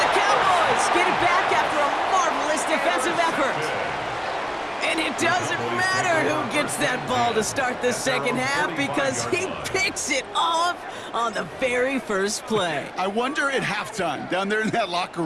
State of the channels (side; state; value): both; identical; correlation 1.00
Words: the Cowboys get it back after a marvelous defensive effort. And it doesn't matter who gets that ball to start the second half because he picks it off on the very first play. I wonder at halftime, down there in that locker